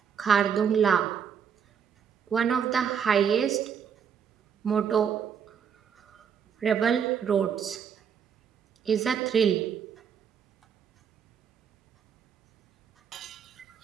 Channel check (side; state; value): left; quieter; 7.5 dB